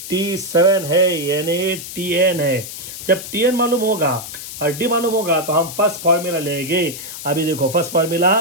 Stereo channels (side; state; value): left; noise; hiss, 10 dB below the sound